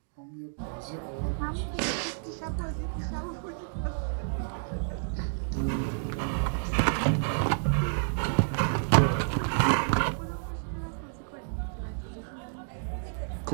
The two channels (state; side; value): silent; left; digital silence